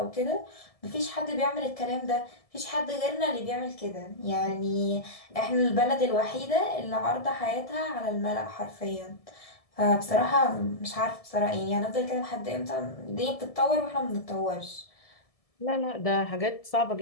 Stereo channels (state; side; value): late; right; 1.7 ms